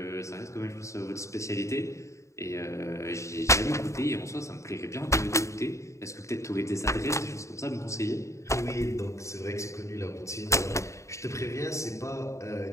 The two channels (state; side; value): late; right; 0.14 ms